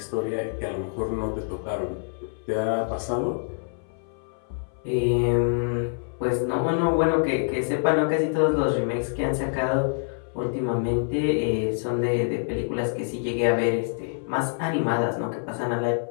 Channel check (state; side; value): silent; right; 59 dB below the other